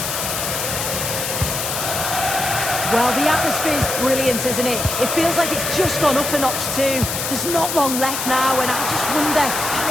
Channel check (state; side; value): noise; left; hiss, 3 dB below the sound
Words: Well, the atmosphere's brilliant, isn't it? It feels like it's just gone up a notch too. There's not long left now, and I just wonder, can